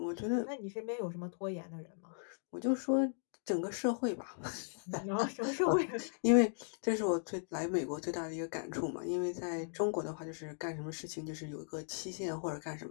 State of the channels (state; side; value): silent; right; digital silence